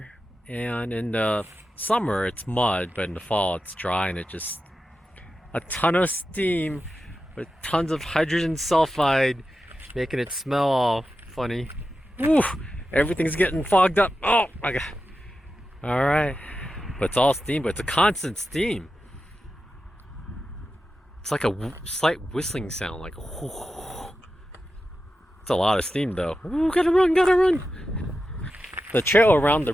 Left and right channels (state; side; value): normal; both; correlation 0.91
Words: and in the summer it's mud, but in the fall it's dry, and it just a ton of steam with tons of hydrogen sulfide, making it smell all funny. Woo! Everything's getting fogged up. Oh my god. Alright. But it's all steam, but it's a constant steam. It's like a slight whistling sound, like whoo. It's a lot of steam though. Ooh, gotta run, gotta run. The trail around the